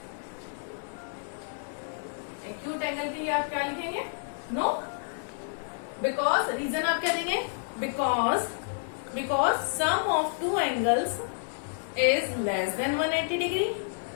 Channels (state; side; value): silent; right; digital silence